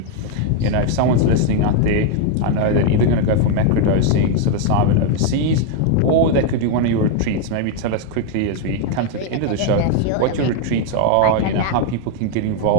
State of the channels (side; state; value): both; different; correlation 0.00